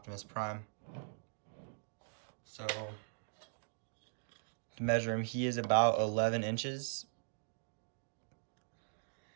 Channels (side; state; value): left; silent; digital silence